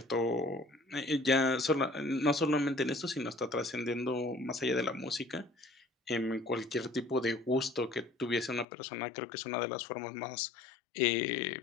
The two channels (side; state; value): right; drops out; at 8.7 s